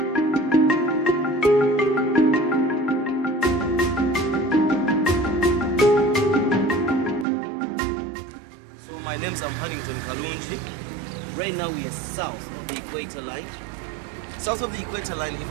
So my name's Huntington Kalunji. Right now we are south of the equator line. South of the equator line,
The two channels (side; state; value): left; drops out; at 7.2 s